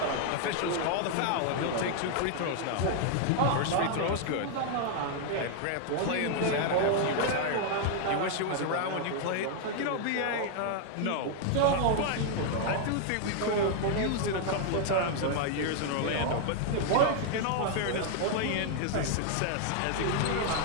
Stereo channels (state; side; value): different; both; correlation 0.00